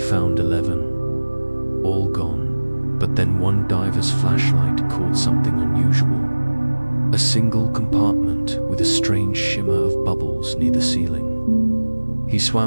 11. All gone, but then one diver's flashlight caught something unusual. A single compartment with a strange shimmer of bubbles near the ceiling. He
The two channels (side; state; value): both; inverted; correlation -1.00